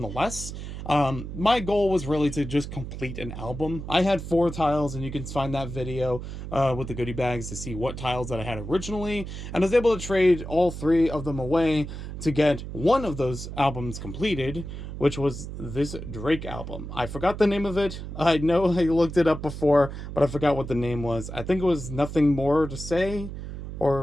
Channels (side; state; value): right; noise; hum, 8 dB below the sound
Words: My goal was really to just complete an album. I had 4 tiles, and you can find that video with the goodie bags to see what tiles that I had originally. And I was able to trade all 3 of them away to get one of those albums completed, which was this Drake album. I forgot the name of it. I know I looked it up before, but I forgot what the name was. I think it was Nothing More to Say,